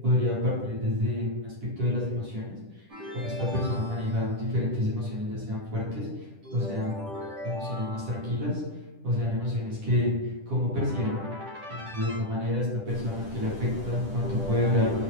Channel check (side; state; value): left; late; 10 ms